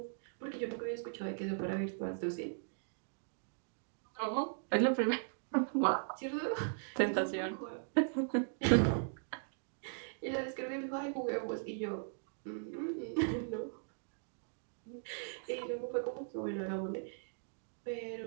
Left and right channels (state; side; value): silent; left; digital silence